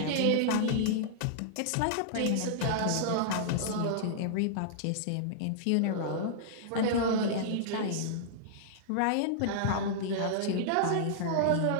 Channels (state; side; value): different; both; correlation -0.01